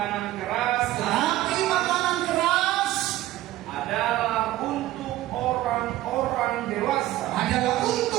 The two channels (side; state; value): left; quieter; 15.3 dB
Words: keras adalah untuk orang-orang dewasa